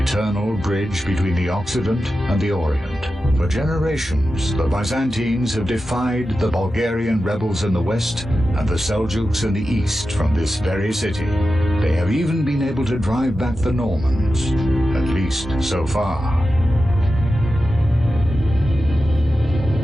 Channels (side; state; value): both; normal; correlation 0.92